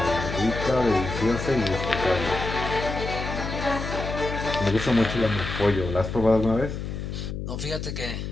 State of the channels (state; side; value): noise; left; hum, 5 dB below the sound